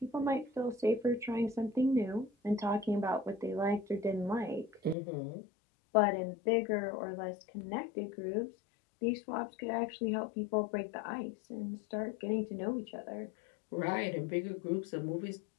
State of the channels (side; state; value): right; drops out; at 5.0 s